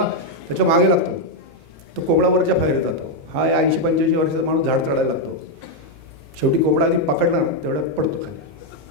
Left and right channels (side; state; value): both; normal; correlation 0.01